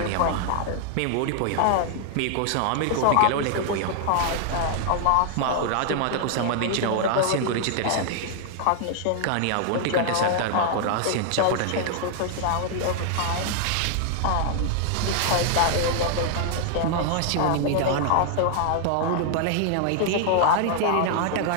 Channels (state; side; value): different; both; correlation 0.00